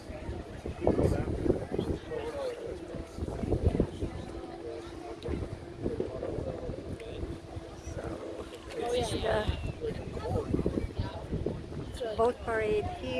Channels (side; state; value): both; identical; correlation 1.00